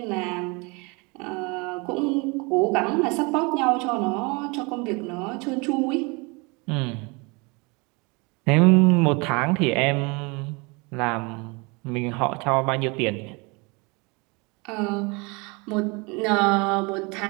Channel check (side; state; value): left; quieter; 28.5 dB